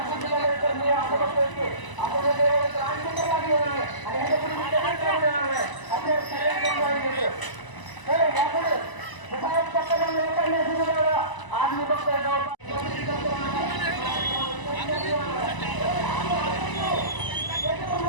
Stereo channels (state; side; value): late; right; 1.0 ms